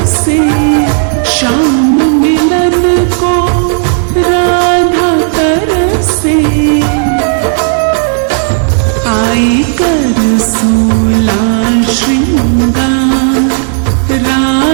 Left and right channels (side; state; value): left; silent; digital silence